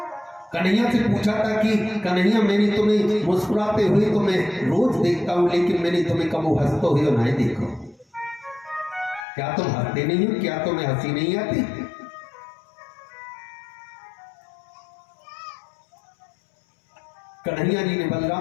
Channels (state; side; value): drops out; right; at 9.2 s